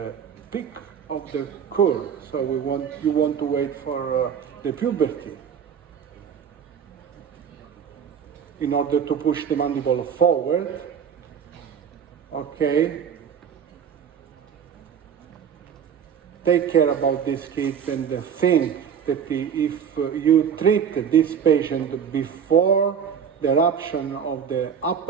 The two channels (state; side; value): quieter; left; 7.7 dB